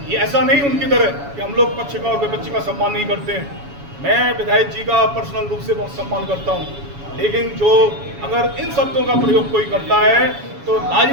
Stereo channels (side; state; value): left; late; 7.1 ms